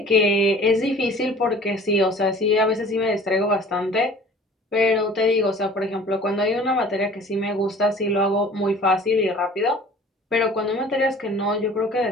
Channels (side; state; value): both; normal; correlation 0.47